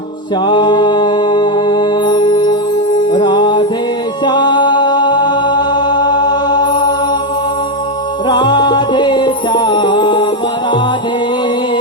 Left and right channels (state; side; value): normal; both; correlation 0.07